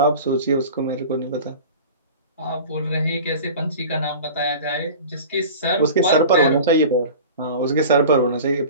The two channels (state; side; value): inverted; both; correlation -0.37